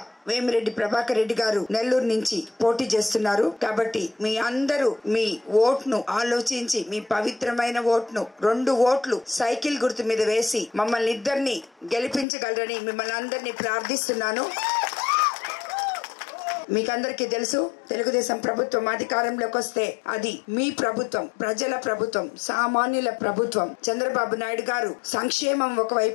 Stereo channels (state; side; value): drops out; right; at 12.2 s